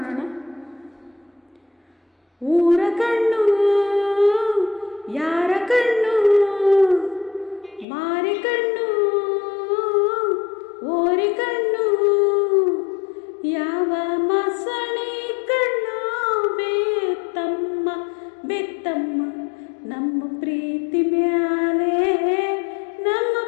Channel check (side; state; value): right; drops out; at 7.9 s